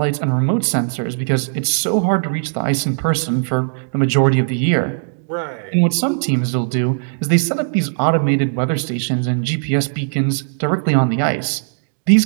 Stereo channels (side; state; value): left; silent; digital silence